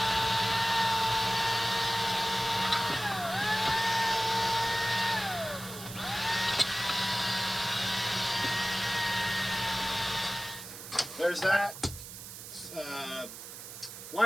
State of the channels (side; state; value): right; noise; hiss, 12 dB below the sound